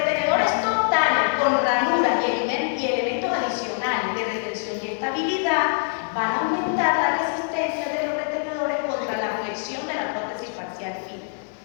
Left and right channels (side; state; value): right; silent; 63 dB below the other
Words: totales con ranuras y elementos adicionales de retención y estabilidad van a aumentar la resistencia de los retenedores contra la flexión de la prótesis parcial fija.